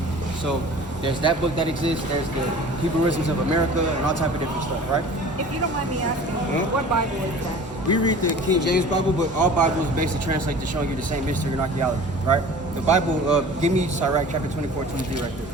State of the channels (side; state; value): both; normal; correlation 0.43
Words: So there's that book that exists. There's the Hebrewisms of America and all type of different stuff, right? If you don't mind me asking, what Bible is that? We read the King James Bible, but all Bibles basically translate to showing you the same history and archaeology, right? The Bible, give me Sirach chapter 24, 23 right there.